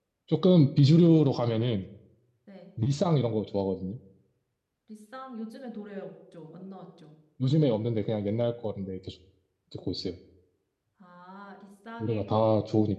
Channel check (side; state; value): both; identical; correlation 1.00